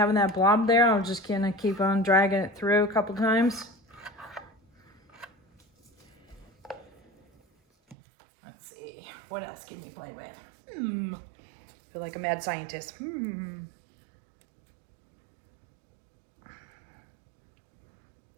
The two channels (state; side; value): drops out; left; at 8.0 s